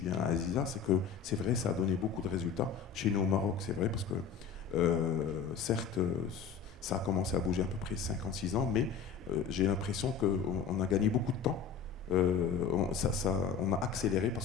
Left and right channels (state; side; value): quieter; right; 6.6 dB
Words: Aziza, c'est que c'est vrai, ça a donné beaucoup de résultats. Chez nous au Maroc, c'est vrai, parce que certes, ça a commencé à bouger à peu près 5-6 ans, mais j'ai l'impression qu'on a gagné beaucoup de temps. On a accéléré